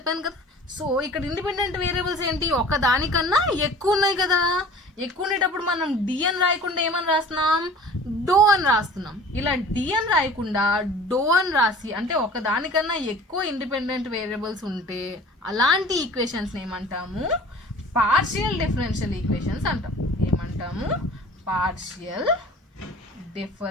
కదా. సో ఇక్కడ ఇండిపెండెంట్ వేరియబుల్స్ ఏంటి, ఒకదానికన్నా ఎక్కువ ఉన్నాయి కదా. ఎక్కువ ఉండేటప్పుడు మనం డి అని రాయకుండా ఏమని రాస్తున్నాం, డో అని రాస్తున్నాం. ఇలా డి అని రాయకుండా డో అని రాసి, అంటే ఒకదానికన్నా ఎక్కువ ఇండిపెండెంట్ వేరియబుల్స్ ఉంటే అలాంటి ఈక్వేషన్స్ని ఏమంటాము, పార్షియల్ డిఫరెన్షియల్ ఈక్వేషన్స్ అంటాం. ఏమంటాము, పార్షియల్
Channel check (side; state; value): both; normal; correlation 0.44